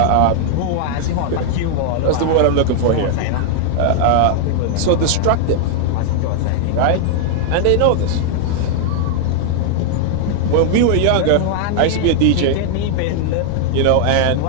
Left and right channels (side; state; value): both; different; correlation 0.00